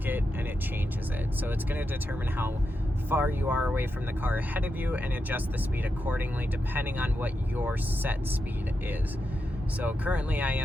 it and it changes it. So it's going to determine how far you are away from the car ahead of you and adjust the speed accordingly depending on what your set speed is. So currently I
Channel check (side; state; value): both; normal; correlation 0.87